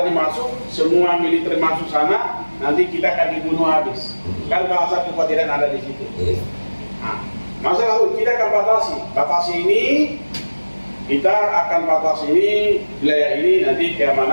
masuk, semua militer masuk sana, nanti kita akan dibunuh habis. Kan bahasa kekhawatiran ada di situ. Nah, masalah kita akan batasi ini. Kita akan batasi ini, wilayah ini, nanti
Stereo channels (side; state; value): both; inverted; correlation -1.00